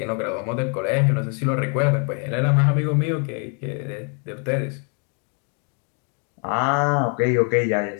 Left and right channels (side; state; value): right; quieter; 39.0 dB